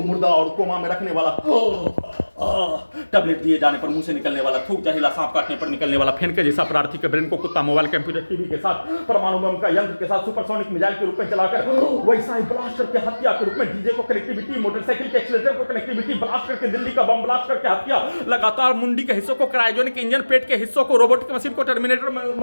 मुर्दा और कोमा में रखने वाला टैबलेट दिए जाने पर मुंह से निकलने वाला थूक, जहरीला सांप काटने पर निकलने वाला फेन के जैसा प्रार्थी के ब्रेन को कुत्ता, मोबाइल, कंप्यूटर, टीवी के साथ परमाणु बम का यंत्र के साथ सुपरसोनिक मिसाइल के रूप में चलाकर वैसा ही ब्लास्ट करके हत्या के रूप में डीजे को कनेक्टिविटी, मोटरसाइकिल के एक्सीलरेटर को कनेक्टिविटी, ब्लास्ट करके दिल्ली का बम ब्लास्ट करके हत्या, लगातार मुंडी के हिस्सों को क्रायोजेनिक इंजन, पेट के हिस्सों को रोबोटिक मशीन को, टर्मिनेटर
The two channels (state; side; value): inverted; both; correlation -1.00